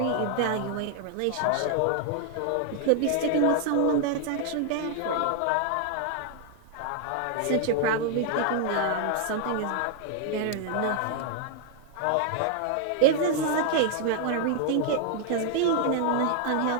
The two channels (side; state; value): both; different; correlation 0.00